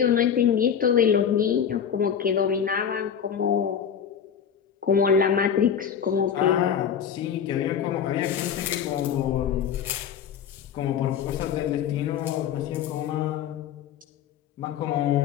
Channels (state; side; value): quieter; right; 8.1 dB